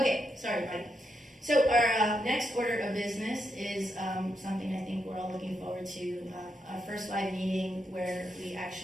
sorry, Mike. So our next order of business is something I think we're all looking forward to, our first live meeting where we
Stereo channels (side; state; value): both; normal; correlation 0.82